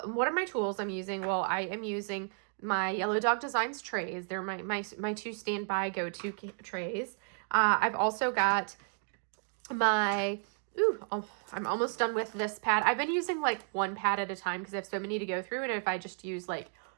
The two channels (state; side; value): silent; left; 56 dB below the other